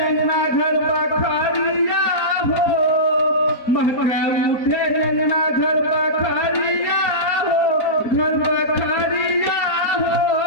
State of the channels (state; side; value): late; right; 4.4 ms